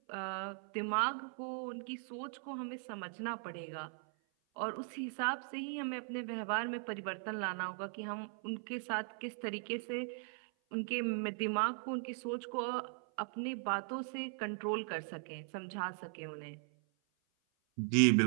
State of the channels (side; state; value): left; silent; 52 dB below the other